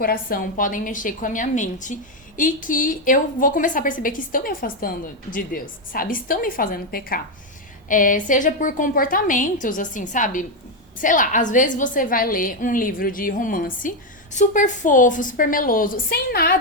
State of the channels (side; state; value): both; normal; correlation 0.05